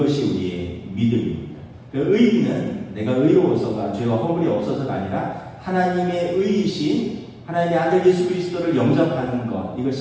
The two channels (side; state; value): both; identical; correlation 1.00